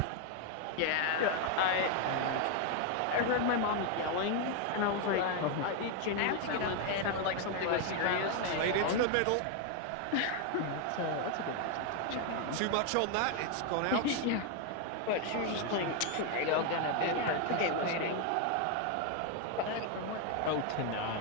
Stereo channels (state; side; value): different; both; correlation 0.01